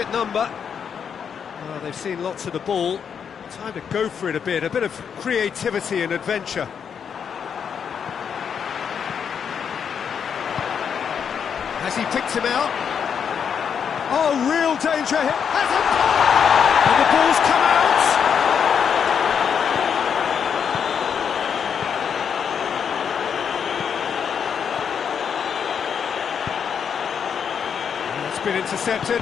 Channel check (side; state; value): right; quieter; 7.3 dB